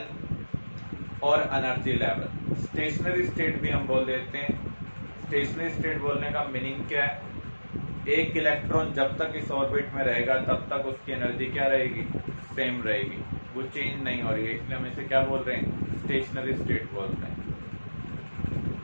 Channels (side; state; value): both; inverted; correlation -1.00